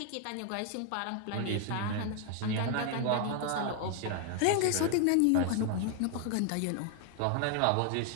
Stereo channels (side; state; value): both; different; correlation 0.00